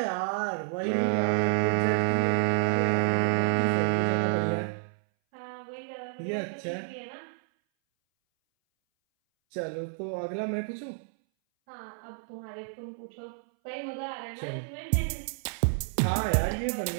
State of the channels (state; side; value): silent; left; 58 dB below the other